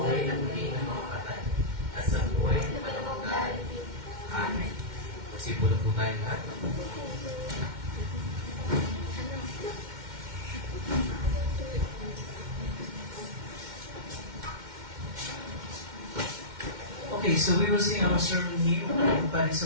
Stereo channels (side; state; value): left; late; 2.1 ms